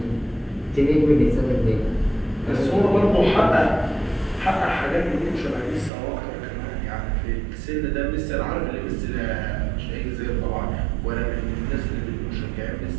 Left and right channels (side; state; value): left; drops out; at 5.9 s